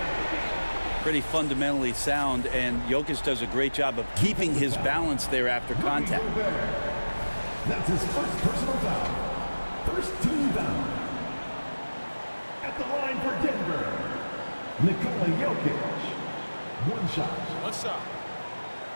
Pretty fundamentally sound, and Jokic does a great job of keeping his balance there after contact. That's his first personal foul. First team foul. At the line for Denver, Nikola Jokic. One shot. What's up?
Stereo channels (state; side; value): inverted; both; correlation -1.00